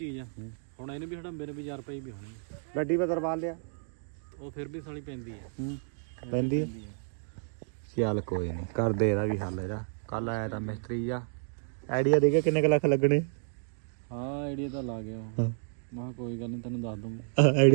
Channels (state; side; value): silent; left; digital silence